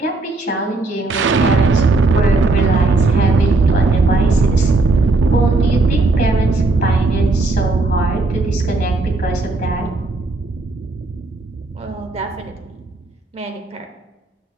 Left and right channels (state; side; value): quieter; left; 3.2 dB